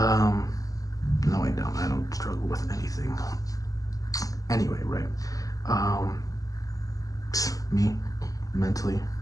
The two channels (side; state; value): right; late; 0.17 ms